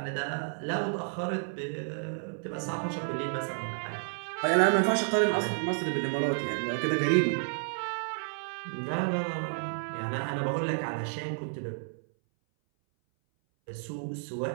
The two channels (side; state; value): left; silent; 57 dB below the other